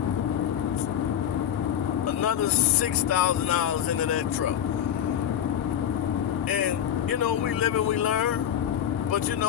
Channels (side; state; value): right; quieter; 10.0 dB